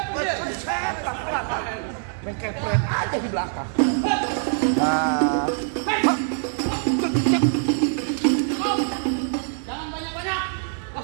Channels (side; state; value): left; silent; 63 dB below the other